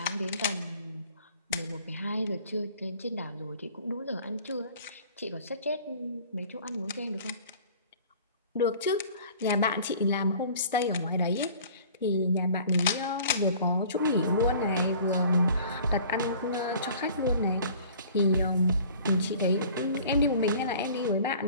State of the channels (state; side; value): inverted; both; correlation -0.48